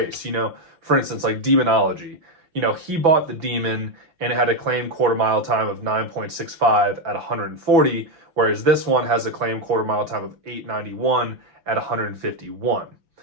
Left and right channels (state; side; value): late; left; 5.9 ms